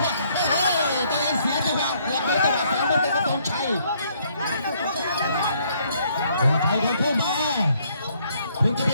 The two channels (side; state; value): both; inverted; correlation -0.67